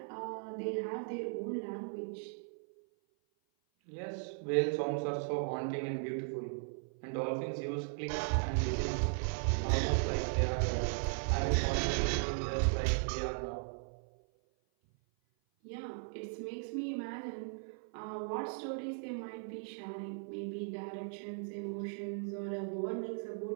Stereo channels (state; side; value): silent; left; 53 dB below the other